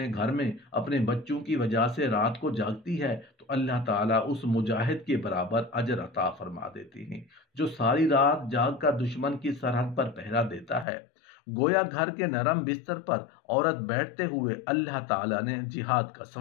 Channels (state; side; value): drops out; right; at 10.9 s